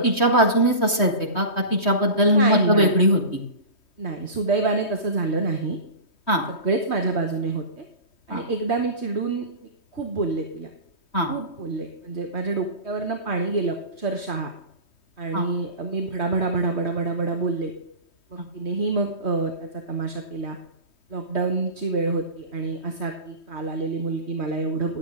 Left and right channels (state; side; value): late; right; 3.2 ms